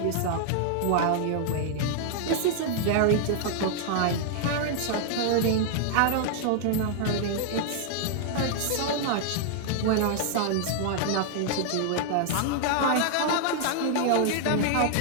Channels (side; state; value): both; different; correlation -0.01